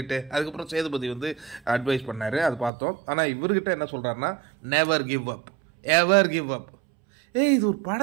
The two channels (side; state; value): left; drops out; at 2.7 s